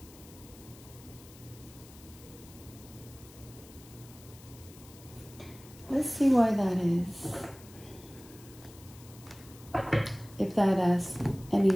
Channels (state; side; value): noise; left; hiss, 21 dB below the sound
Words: Let's see why that is. If that has any